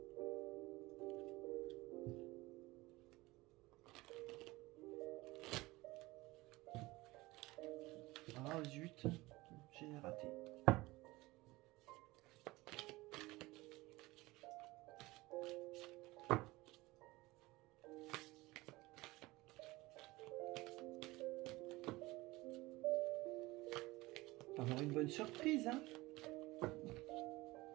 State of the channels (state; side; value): quieter; left; 20.6 dB